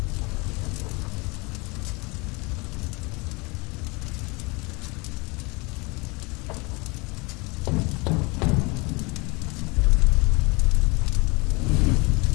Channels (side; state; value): right; quieter; 27.1 dB